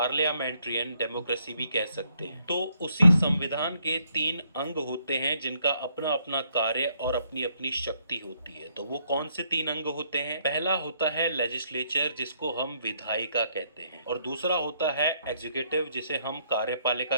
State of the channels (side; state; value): both; inverted; correlation -0.71